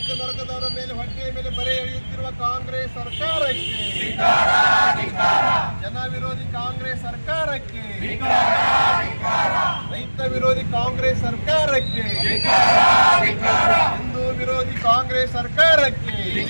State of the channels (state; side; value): inverted; both; correlation -1.00